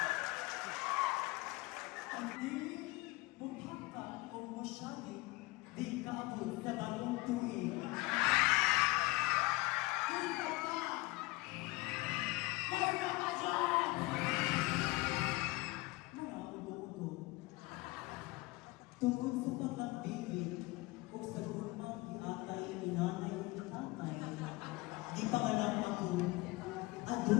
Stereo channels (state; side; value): quieter; right; 22.3 dB